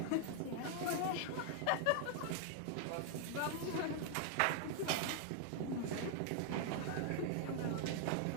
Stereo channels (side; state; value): both; different; correlation 0.00